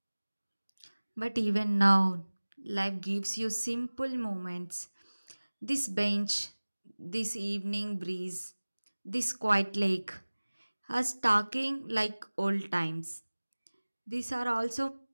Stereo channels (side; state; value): both; inverted; correlation -1.00